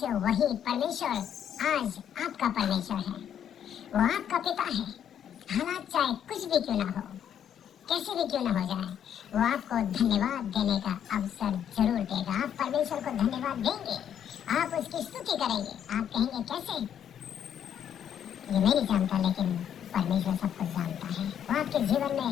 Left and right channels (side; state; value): right; quieter; 9.3 dB